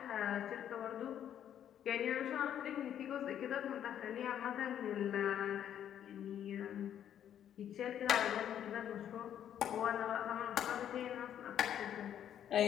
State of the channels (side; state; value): right; quieter; 10.0 dB